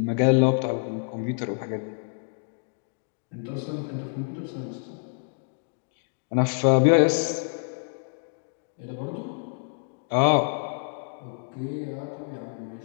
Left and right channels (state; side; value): silent; right; digital silence